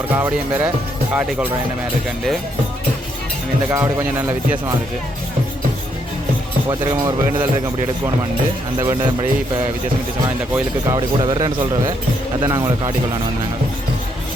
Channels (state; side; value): normal; both; correlation 0.74